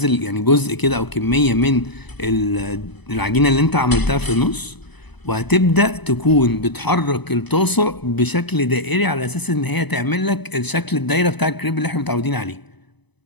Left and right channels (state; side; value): late; right; 0.99 ms